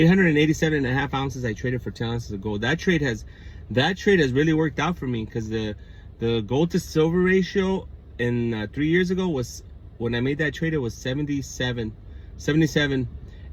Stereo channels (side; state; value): both; identical; correlation 1.00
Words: and a half ounces. I traded for 10 ounces of gold. That trade has really worked out for me, because the gold to silver ratio in 3 years ago was, when I made that trade, it was 77,